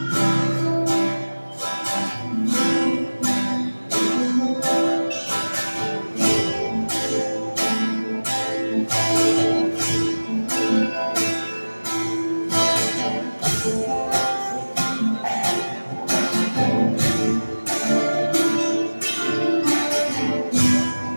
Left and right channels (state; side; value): inverted; both; correlation -1.00